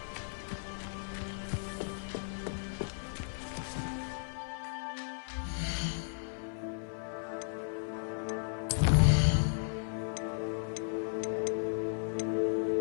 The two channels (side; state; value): right; silent; 54 dB below the other